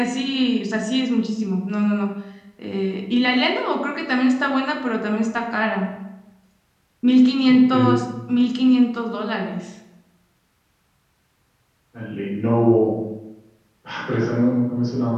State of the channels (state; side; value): identical; both; correlation 1.00